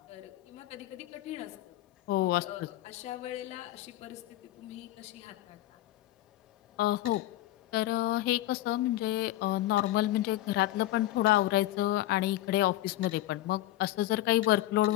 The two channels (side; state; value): right; quieter; 15.4 dB